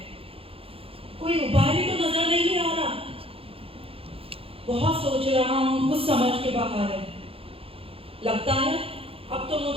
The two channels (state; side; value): late; left; 0.27 ms